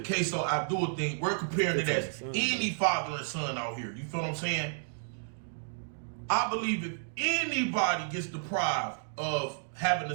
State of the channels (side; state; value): left; silent; digital silence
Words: Abdul thing. We're comparing it as any father and son out here. You feel what I'm saying? I believe if anybody gets deprived of having